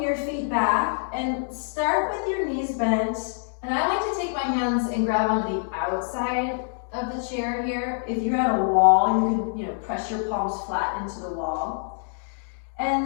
your feet back and start with your knees bent. And I like to take my hands and grab onto the outside of the chair here. If you're at a wall, you can press your palms flat into the wall.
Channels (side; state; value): right; silent; digital silence